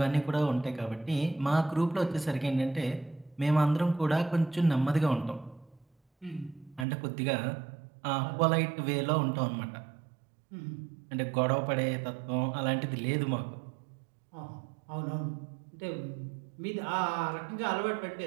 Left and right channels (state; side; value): drops out; left; at 6.9 s